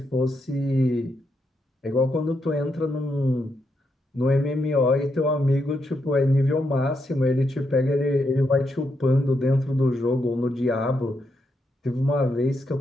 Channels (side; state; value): both; normal; correlation 0.81